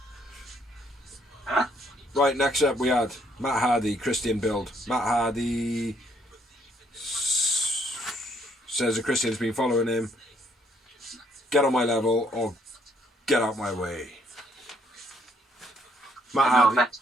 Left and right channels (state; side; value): normal; both; correlation 0.68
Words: Huh? Right, next up we had Matt Hardy, Christian build. Matt Hardy says that Christian's been following him. Get on my level or get out my way. Matt